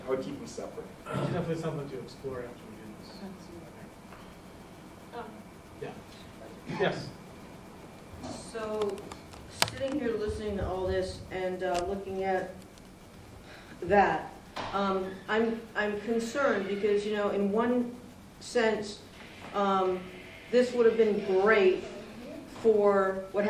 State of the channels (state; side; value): identical; both; correlation 1.00